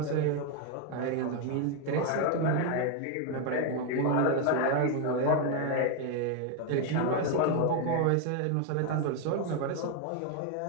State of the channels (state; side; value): different; both; correlation 0.01